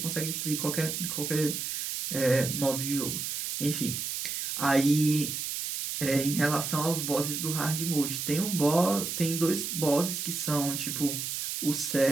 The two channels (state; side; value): noise; right; hiss, 3 dB below the sound